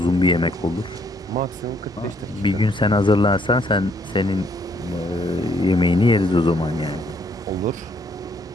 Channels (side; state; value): both; normal; correlation 0.69